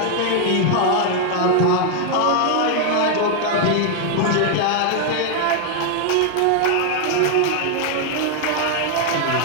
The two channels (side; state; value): both; different; correlation 0.00